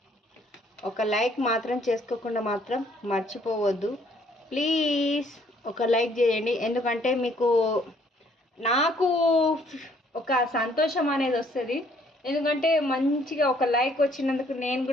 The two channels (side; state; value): both; normal; correlation 0.63